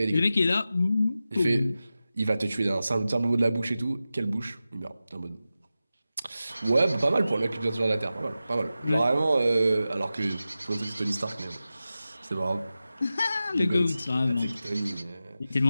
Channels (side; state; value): both; inverted; correlation -0.94